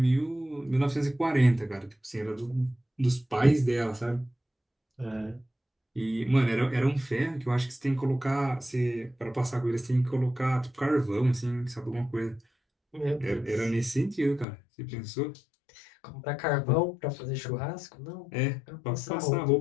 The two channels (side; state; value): right; drops out; at 14.5 s